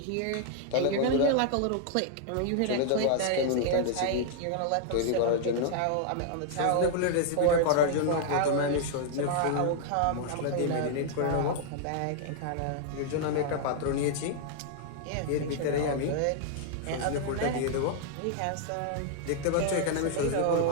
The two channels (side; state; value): both; different; correlation 0.00